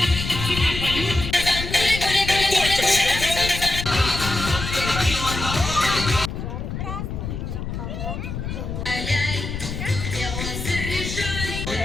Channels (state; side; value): noise; left; rumble, 5 dB below the sound